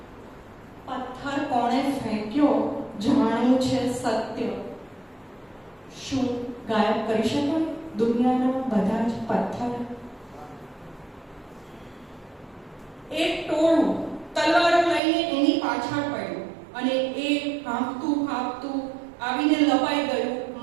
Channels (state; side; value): drops out; left; at 15.0 s